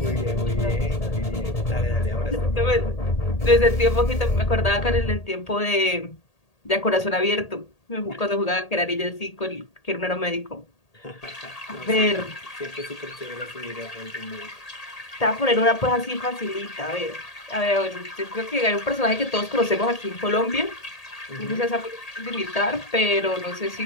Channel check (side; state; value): right; late; 1.8 ms